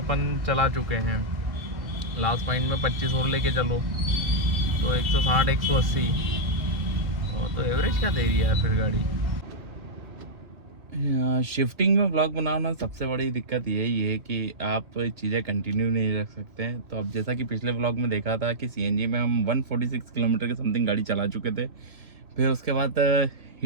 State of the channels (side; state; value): left; late; 2.1 ms